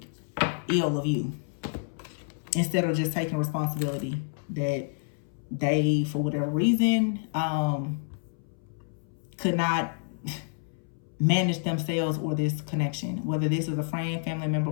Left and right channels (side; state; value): right; silent; 59 dB below the other